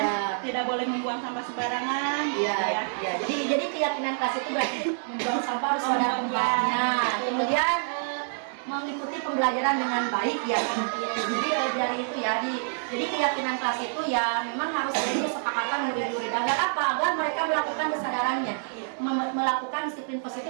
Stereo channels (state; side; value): silent; left; digital silence